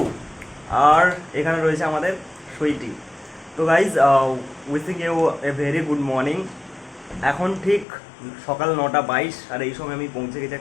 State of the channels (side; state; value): right; drops out; at 7.9 s